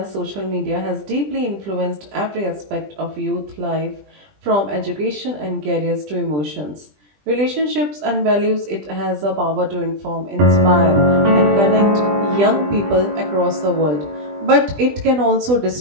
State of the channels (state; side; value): late; left; 20 ms